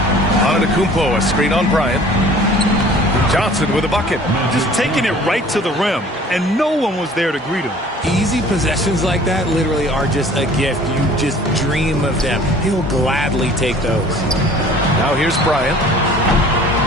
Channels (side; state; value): both; normal; correlation 0.49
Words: Antetokounmpo, a screen on Bryant. Johnson with a bucket. Just taking it right to the rim, and no one was there to greet him. Easy possessions like that literally are just a gift. You just dream of them. He'll gladly take those. Now here's Bryant.